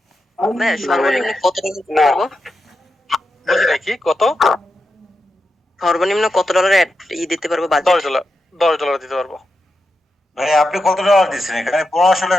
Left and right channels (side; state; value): both; normal; correlation 0.87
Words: ভাইয়া সর্বনিম্ন কত টাকা দিতে না। পারবো? বুঝি নাই কি কত? সর্বনিম্ন কত ডলারের দিতে পারবো বাজেট? $10। $10 দিতে পারবো। ভাই আপনি কত ডলার দিচ্ছেন এখানে? 1500